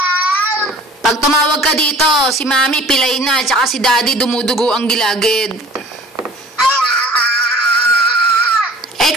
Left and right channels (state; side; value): normal; both; correlation 0.48